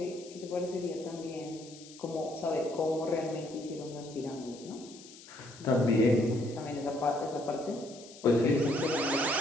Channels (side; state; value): left; noise; hiss, 19 dB below the sound